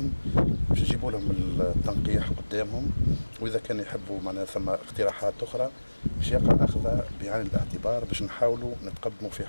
باش نجيبوا لهم التنقيح قدامهم، واذا كان يحبوا معناها ثم اقتراحات اخرى باش يقع اخذها بعين الاعتبار باش نحاولوا نتقدموا في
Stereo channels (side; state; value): both; inverted; correlation -1.00